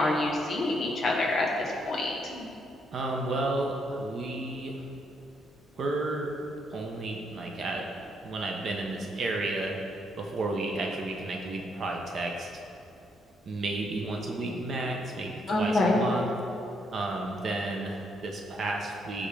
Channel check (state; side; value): normal; both; correlation 0.74